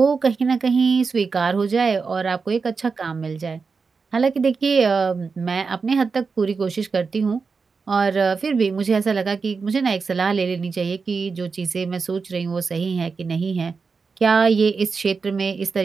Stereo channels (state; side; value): quieter; left; 4.9 dB